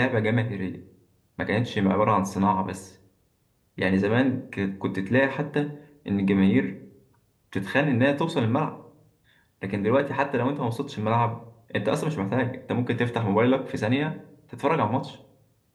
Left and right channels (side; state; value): both; identical; correlation 1.00